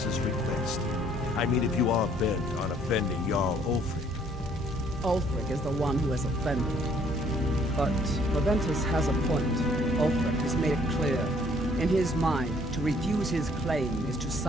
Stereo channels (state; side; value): normal; both; correlation 0.62